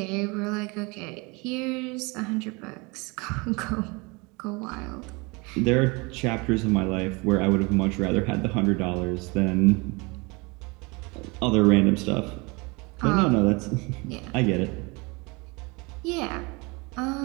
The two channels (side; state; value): left; quieter; 27.3 dB